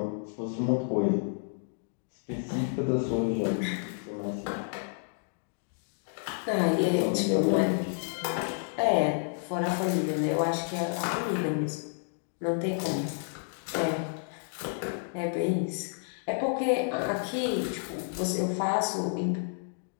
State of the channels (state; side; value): silent; right; digital silence